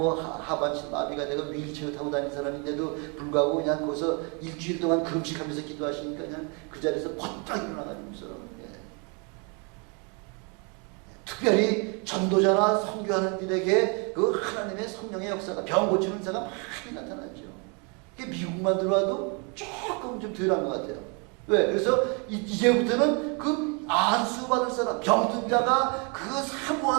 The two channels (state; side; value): quieter; left; 34.1 dB